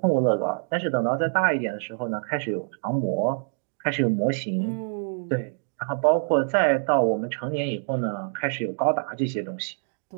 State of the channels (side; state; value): left; silent; digital silence